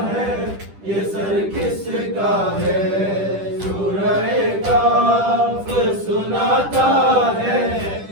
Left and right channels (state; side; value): late; left; 10 ms